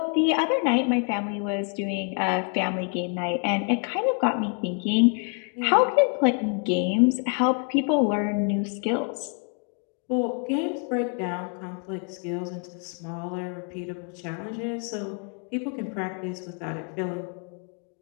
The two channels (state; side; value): quieter; right; 39.3 dB